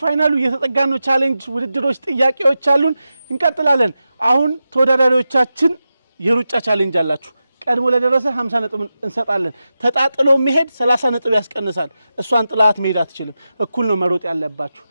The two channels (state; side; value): inverted; both; correlation -0.91